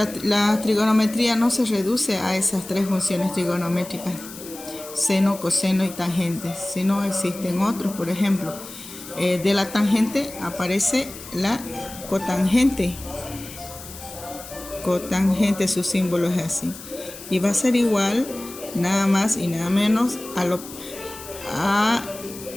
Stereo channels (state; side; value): noise; left; hiss, 15 dB below the sound